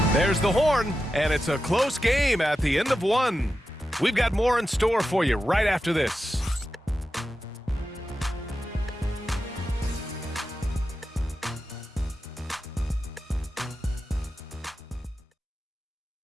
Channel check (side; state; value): both; normal; correlation 0.91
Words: There's the horn, and it's a close game at the end of 1. We've got more in store for you right after this.